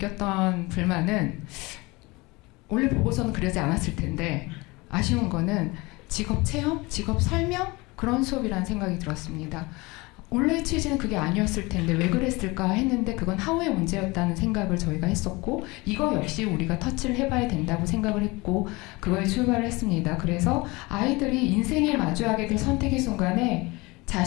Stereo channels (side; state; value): right; quieter; 23.9 dB